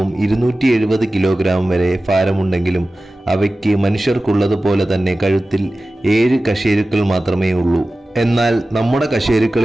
270 കിലോഗ്രാം വരെ ഭാരമുണ്ടെങ്കിലും അവയ്ക്ക് മനുഷ്യർക്കുള്ളതുപോലെ തന്നെ കഴുത്തിൽ 7 കശേരുക്കൾ മാത്രമേ ഉള്ളൂ. എന്നാൽ നമ്മുടെ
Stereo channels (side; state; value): both; normal; correlation 0.96